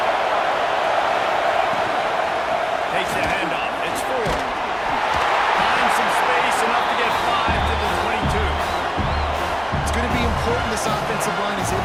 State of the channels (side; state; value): both; identical; correlation 1.00